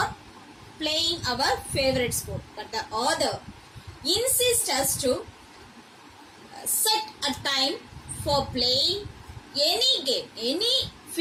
playing our favorite sport. But the author insists us to set a time for playing any game, any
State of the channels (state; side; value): identical; both; correlation 1.00